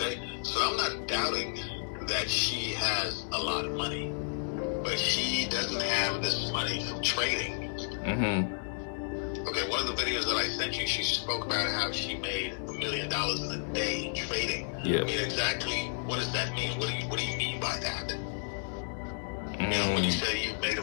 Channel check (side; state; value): right; silent; digital silence